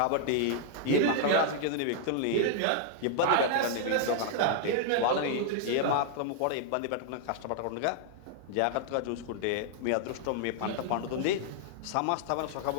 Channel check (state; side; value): different; both; correlation -0.01